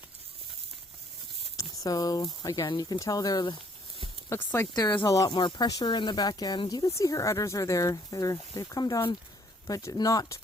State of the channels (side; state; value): both; normal; correlation 0.63